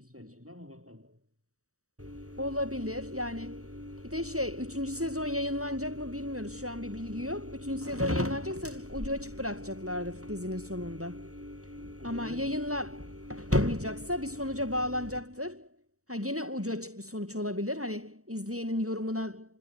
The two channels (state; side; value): late; left; 0.65 ms